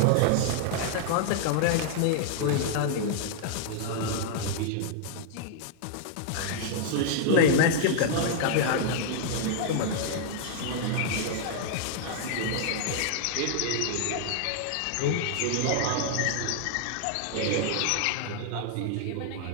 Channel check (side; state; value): both; different; correlation -0.01